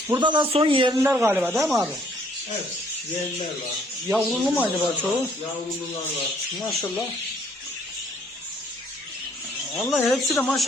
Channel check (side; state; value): both; normal; correlation 0.64